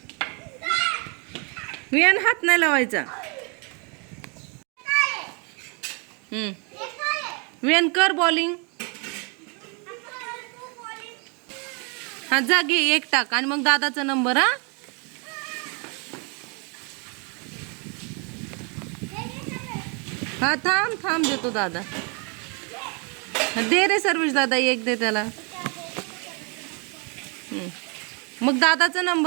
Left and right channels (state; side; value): quieter; left; 34.6 dB